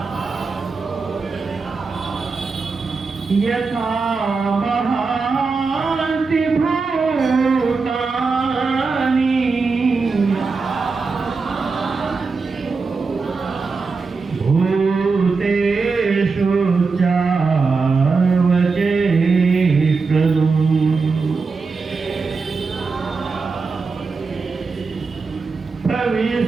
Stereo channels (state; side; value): quieter; left; 4.5 dB